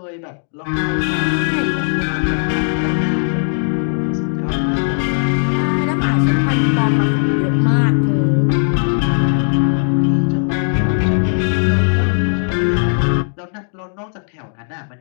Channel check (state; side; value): silent; right; digital silence